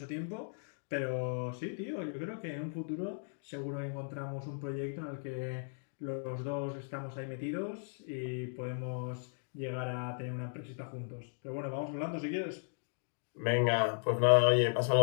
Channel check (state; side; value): silent; right; digital silence